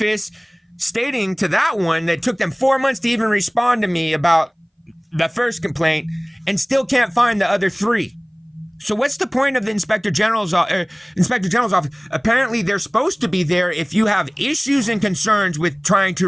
stating to that one that it took them 4 months to even respond to me about the first complaint and still can't find the other 3. So what's the point of the Inspector General's office? Apparently they're supposed to be there if you have issues and concerns with trying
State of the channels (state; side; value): identical; both; correlation 1.00